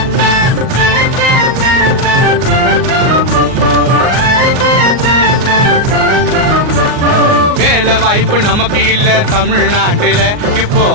வேலை வாய்ப்பு நமக்கு இல்ல தமிழ்நாட்டுல, இப்போ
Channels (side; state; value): left; late; 38 ms